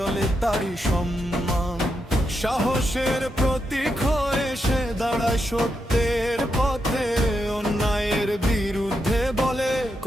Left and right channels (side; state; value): both; normal; correlation 0.84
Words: তারই সম্মান। সাহসের প্রতীক হয়ে সে দাঁড়ায় সত্যের পথে, অন্যায়ের বিরুদ্ধে বলে